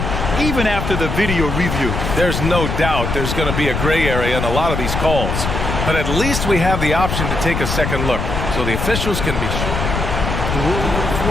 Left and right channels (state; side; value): noise; left; rumble, 2 dB below the sound